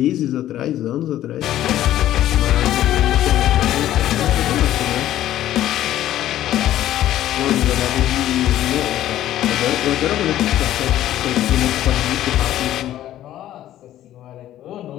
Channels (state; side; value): quieter; right; 12.9 dB